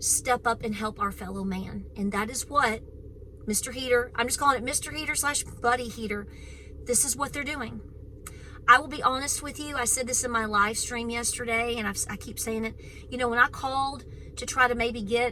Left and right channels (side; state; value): both; identical; correlation 1.00